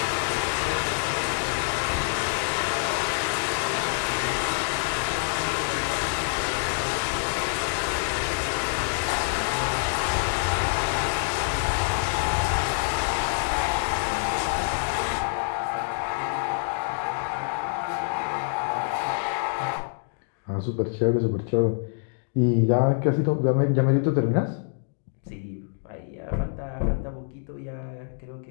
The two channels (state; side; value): silent; right; digital silence